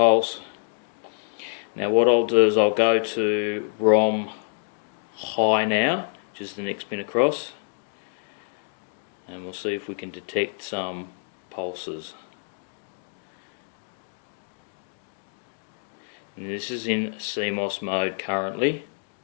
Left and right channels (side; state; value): right; silent; digital silence